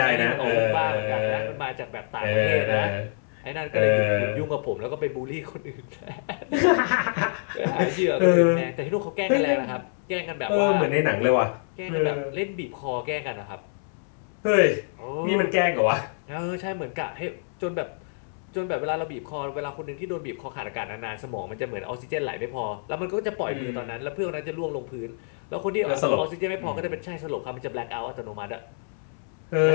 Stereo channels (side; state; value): right; silent; 60 dB below the other